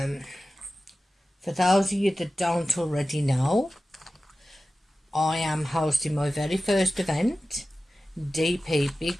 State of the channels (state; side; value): normal; both; correlation 0.95